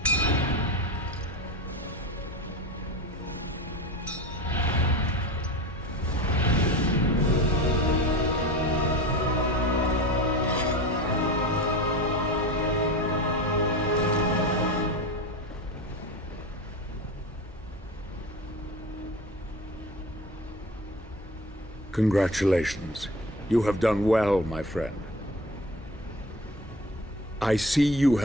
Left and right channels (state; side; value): normal; both; correlation 0.31